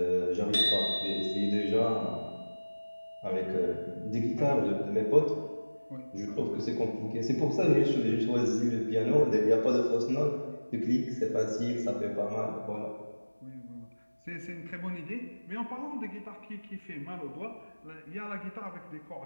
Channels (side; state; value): both; inverted; correlation -1.00